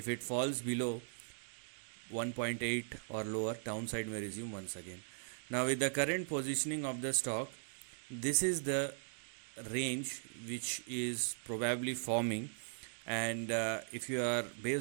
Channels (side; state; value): left; silent; digital silence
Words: it falls below 1.8 or lower, downside may resume once again. Now with the current positioning of the stock, this is the range which is probably forming, and if you are